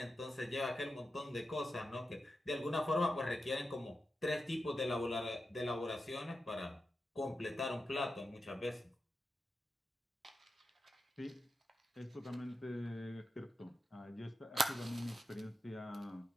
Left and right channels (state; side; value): normal; both; correlation 0.90